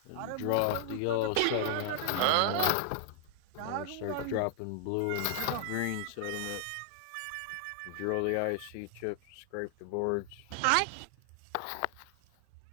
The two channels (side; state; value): both; different; correlation 0.00